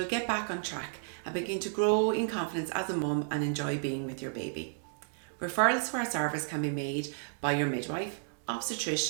get back on track and begin to grow in confidence as a mum and enjoy being with your baby. Referrals for our service can be made by your midwife,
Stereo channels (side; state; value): left; silent; digital silence